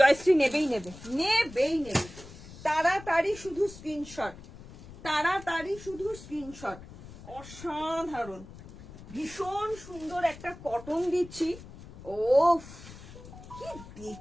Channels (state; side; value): noise; left; rumble, 17 dB below the sound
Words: নেবেই নেবে, নেবেই নেবে। তাড়াতাড়ি শুধু স্ক্রিনশট, তাড়াতাড়ি শুধু স্ক্রিনশট। অসাধারণ, ভীষণ সুন্দর একটা কটন দিচ্ছি। ও কি